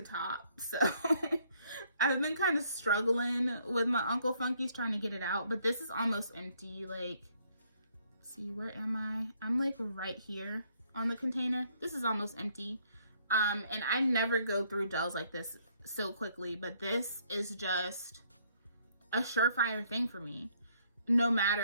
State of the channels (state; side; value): inverted; both; correlation -0.67